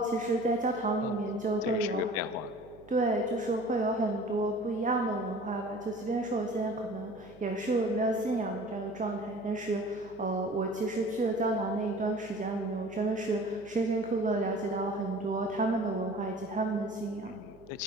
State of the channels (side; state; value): right; noise; hum, 22 dB below the sound